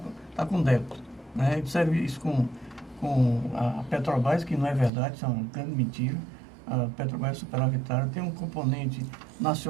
com débito. Né? Ele serve isso com a Petrobras, que não é verdade, isso é uma grande mentira. A Petrobras superavitária tem um componente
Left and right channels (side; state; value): left; drops out; at 4.9 s